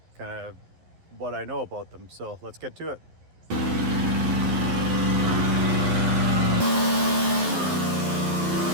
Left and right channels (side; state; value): left; late; 11 ms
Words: kind of what I know about them. So let's get to it.